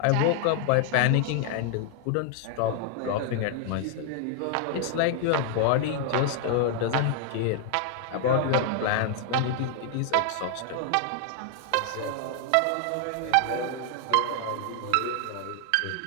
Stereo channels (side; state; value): both; different; correlation 0.00